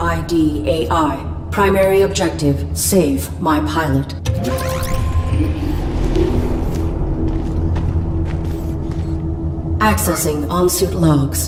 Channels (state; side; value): identical; both; correlation 1.00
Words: AI. Primary objective, save my pilot. Accessing on-suit